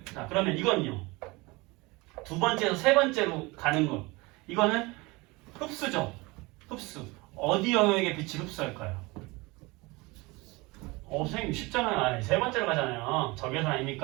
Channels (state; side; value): quieter; left; 23.9 dB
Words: 자, 그러면 이건요. 두 번째에서 세 번째로 가는 거. 이거는 흡수죠. 흡수. 어디 영역에 빛을 흡수할까요? 선생님 쉽잖아요. 아니, 세 번째로 가잖아요. 적외선